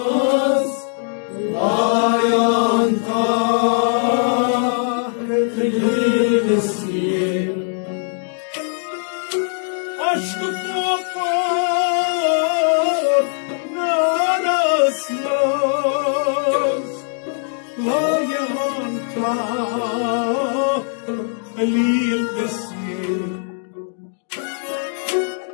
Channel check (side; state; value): right; silent; 66 dB below the other